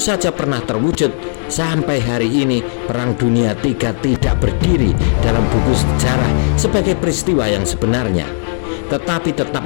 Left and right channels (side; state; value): right; silent; digital silence